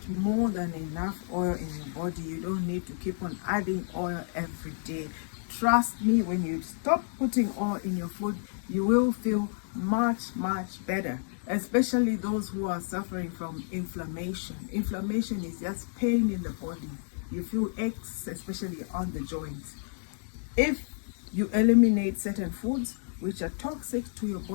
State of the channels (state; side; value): silent; right; digital silence